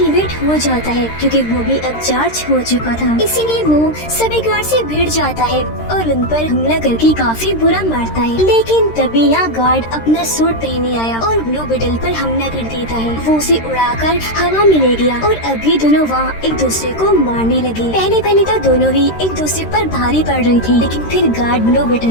हो जाता है क्योंकि वो भी अब चार्ज हो चुका था। इसीलिए वो सभी गार्ड से भिड़ जाता है और उन पर हमला करके काफी बुरा मारता है। लेकिन तभी यहाँ गार्ड अपना सूट पहने आया और ब्लू बीटल पर हमला कर देता है। वो उसे उड़ाकर हवा में ले गया और अभी दोनों वहाँ एक दूसरे को मारने लगे। पहले तो दोनों ही एक दूसरे पर भारी पड़ रही थी लेकिन फिर गार्ड ब्लू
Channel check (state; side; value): late; right; 13 ms